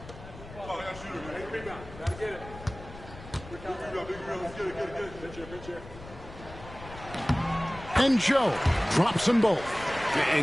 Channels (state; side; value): noise; left; rumble, 16 dB below the sound